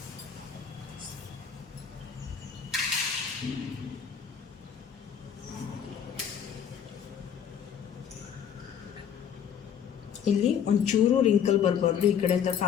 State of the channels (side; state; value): right; quieter; 8.2 dB